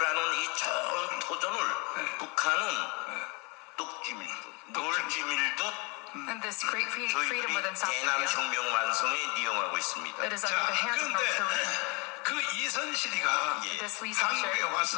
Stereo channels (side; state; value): right; quieter; 29.7 dB